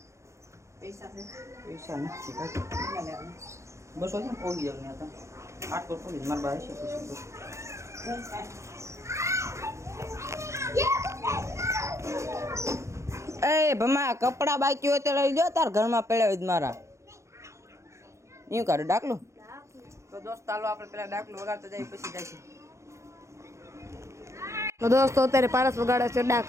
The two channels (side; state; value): left; late; 0.14 ms